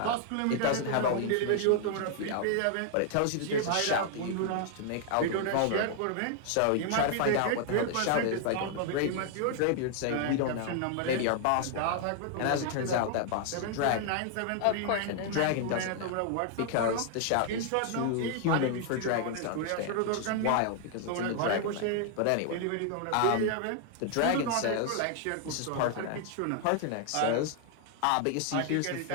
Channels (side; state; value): both; different; correlation 0.00